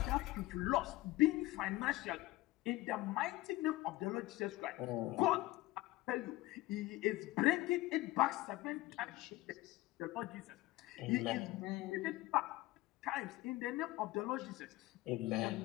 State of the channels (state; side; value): quieter; right; 18.4 dB